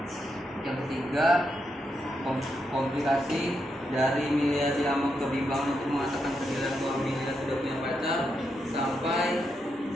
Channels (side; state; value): both; normal; correlation 0.82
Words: Yang ketiga komplikasi dari Milea diamuk kebimbangan untuk mengatakan ke Dilan bahwa Milea sudah punya pacar sampai